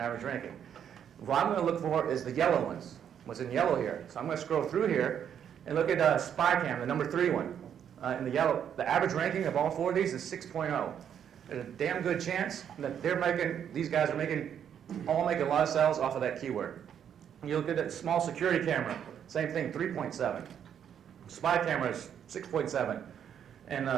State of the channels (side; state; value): left; quieter; 8.8 dB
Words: ranking. What I'm going to look for is the yellow ones, what's in yellow here. So I'm going to scroll through here and look at Spy Cam, the number 3 one. In the yellow, the average ranking of all 4 of these is 6.0. There's a damn good chance that these guys are all making a lot of sales off of that keyword. You look at that small security camera, same thing, 3.7. Spy camera is 6.7. And